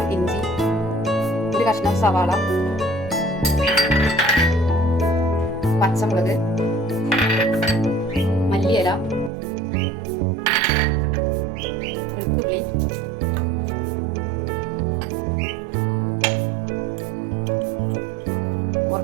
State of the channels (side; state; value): left; drops out; at 9.3 s